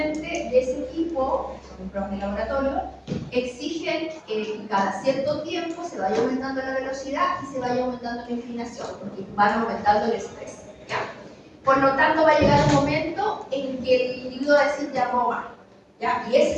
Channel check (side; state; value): both; identical; correlation 1.00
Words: de ese tipo, son pruebas de laboratorio, exigen que cada cierto tiempo se vaya aumentando la velocidad y se vaya aumentando la inclinación, porque van aumentando el estrés. ¿Ya? Por lo tanto, va a llegar un momento en que el individuo va a decir ya no va. ¿Ya? Y ese